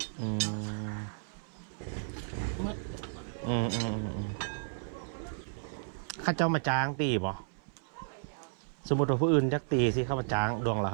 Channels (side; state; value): left; silent; 56 dB below the other